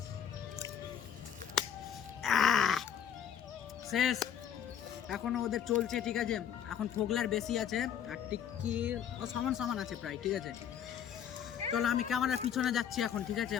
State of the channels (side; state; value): right; quieter; 9.0 dB